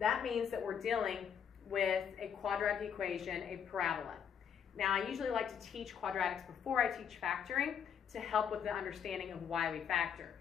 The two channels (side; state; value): right; quieter; 7.8 dB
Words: means that we're dealing with a quadratic equation, a parabola. Now I usually like to teach quadratics before I teach factoring to help with the understanding of why we factor.